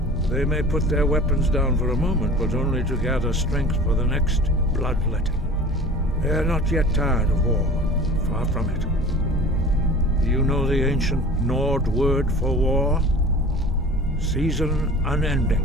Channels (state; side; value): normal; both; correlation 0.41